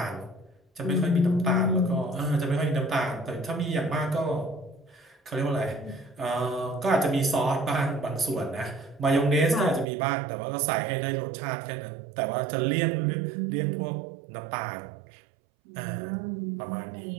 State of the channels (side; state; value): left; drops out; at 9.9 s